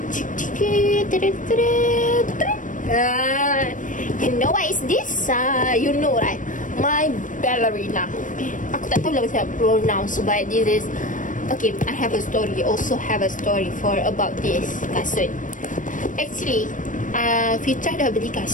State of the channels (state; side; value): late; right; 0.38 ms